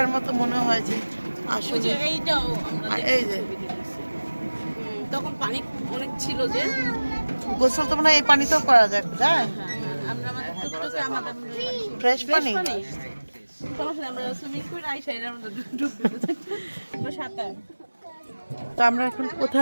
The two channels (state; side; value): inverted; both; correlation -1.00